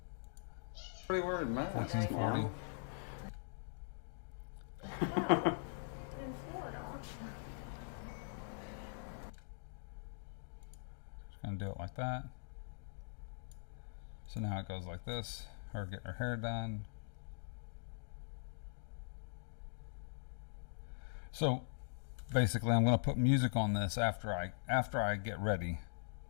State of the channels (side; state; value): right; silent; digital silence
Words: 1440. Just gonna do it like that. So now it goes like this. Her getting her hair done. So basically I'm going to put music on this after I get ready